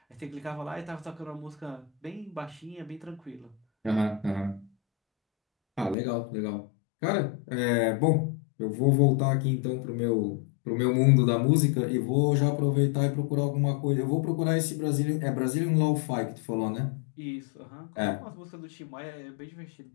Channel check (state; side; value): drops out; right; at 6.0 s